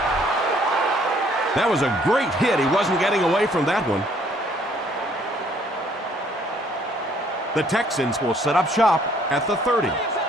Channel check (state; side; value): normal; both; correlation 0.63